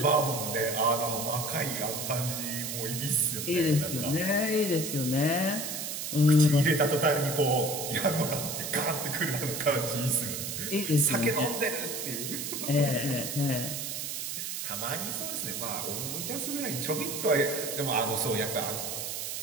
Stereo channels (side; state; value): right; noise; hiss, 4 dB below the sound